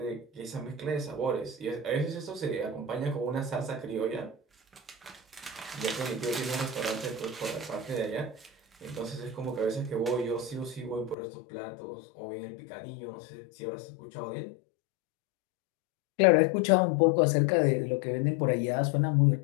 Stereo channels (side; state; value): right; drops out; at 11.2 s